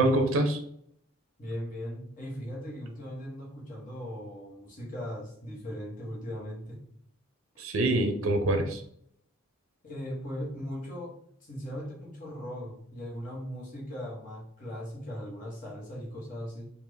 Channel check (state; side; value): normal; both; correlation 0.56